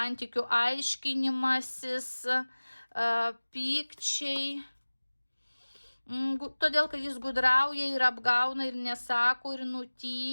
aiškinimasis, pykčiai. Todėl, kad jis gudrauja ir apgauna ir nesako ir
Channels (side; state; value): both; inverted; correlation -1.00